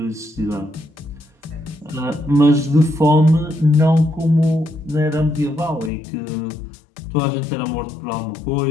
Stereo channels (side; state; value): right; drops out; at 5.9 s